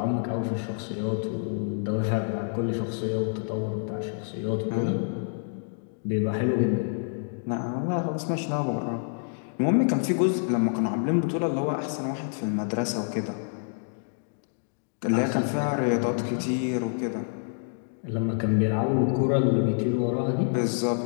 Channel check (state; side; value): silent; right; digital silence